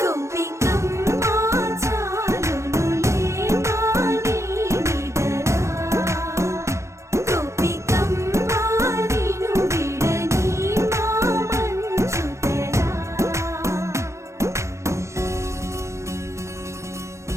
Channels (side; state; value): left; late; 0.14 ms